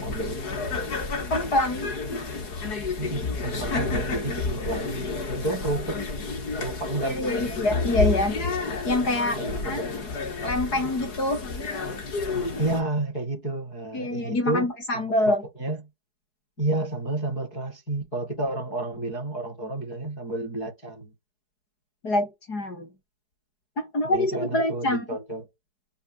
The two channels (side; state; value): right; late; 4.7 ms